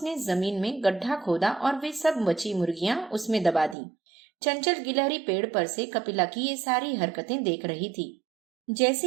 जमीन में गड्ढा खोदा और वे सब बची मुर्गियां उसमें दबा दी। चंचल गिलहरी पेड़ पर से कपिला की ये सारी हरकतें देख रही थी। जैसे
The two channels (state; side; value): drops out; left; at 3.8 s